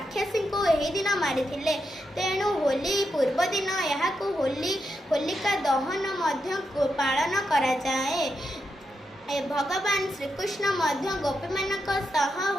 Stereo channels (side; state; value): both; normal; correlation 0.84